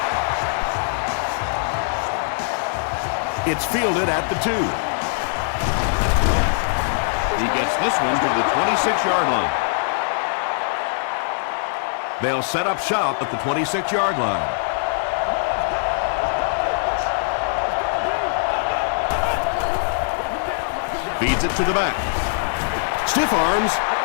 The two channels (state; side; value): silent; right; digital silence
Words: It's fielded at the 2. He gets this one to the 26-yard line. They'll set up shop at the 26-yard line. Feeds it to the back. Stiff arms,